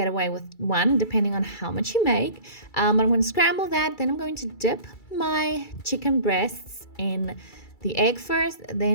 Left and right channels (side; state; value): right; late; 2.3 ms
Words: away with 1 depending on how much you make. But I'm going to scramble that. Then I'm going to dip my chicken breasts in the egg first,